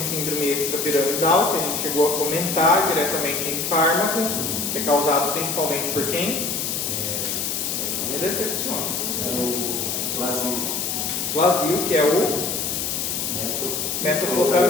síndrome extrapiramidal, que a gente chegou a comentar diretamente em fármaco, que é causado principalmente por quem? Não me decepciona. É o Plasio. Plasio, que é o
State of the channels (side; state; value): left; noise; hiss, 1 dB below the sound